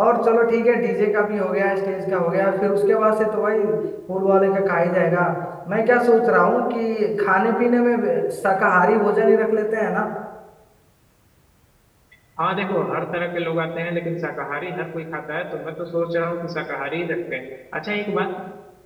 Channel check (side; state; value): both; identical; correlation 1.00